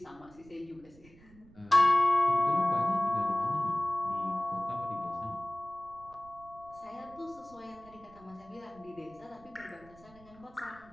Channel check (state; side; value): noise; right; rumble, 24 dB below the sound